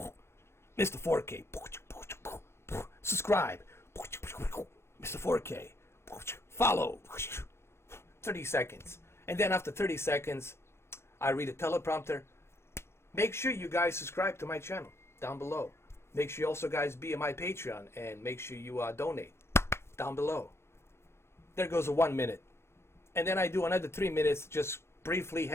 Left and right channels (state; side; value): late; right; 0.12 ms